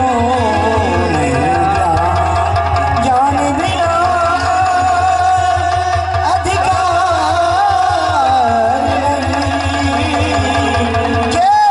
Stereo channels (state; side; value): identical; both; correlation 1.00